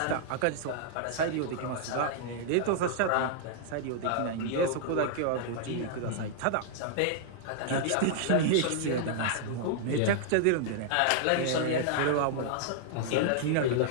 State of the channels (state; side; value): different; both; correlation -0.01